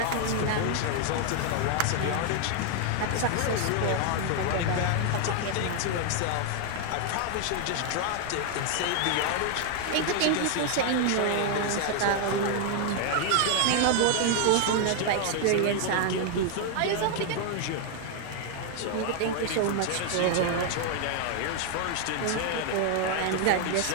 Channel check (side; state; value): both; different; correlation 0.00